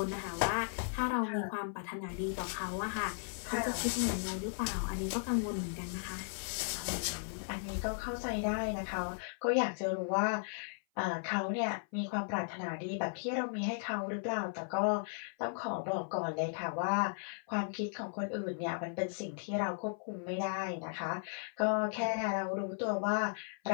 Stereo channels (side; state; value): right; silent; 54 dB below the other